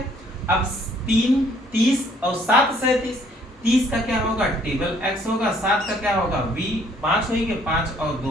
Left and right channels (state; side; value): normal; both; correlation 0.62